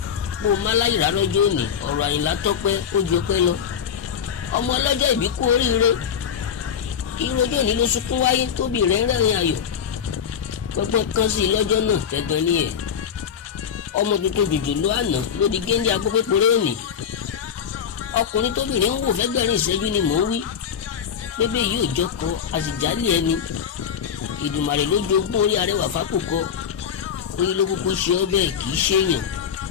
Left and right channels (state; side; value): quieter; right; 7.9 dB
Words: bó o má láyìírá lọ́jọ́ òní, ọ̀rọ̀ Àyìnlá tọ́pẹ́ ó ju ọpẹ́ lọ. ọmọ ọlọ́jọ́ ìbí kú oríire, ìrọ̀jọ́ òní ló sunkún wáyé, tóbi rẹ̀ ń rẹ́rìn ayọ̀. gbọ́ngbọ́n kan sí i lọ́jọ́ náà tẹ́gbọ́n ní ẹ̀. ọmọ tuntun jòjòló àná ló di géńdé agbópéporé òní. ọkùnrin tóbìnrin ń wò fẹ́gbẹ̀rin ìṣẹ́jú ni mò ń wí. bébè yìí ò jọkọ àsìjálì ẹni. Ìdùmarè ló jogún orí arẹwà fákòkò, orí ló kúkú ṣe ọ bẹ́ẹ̀ kì í ṣèyàn.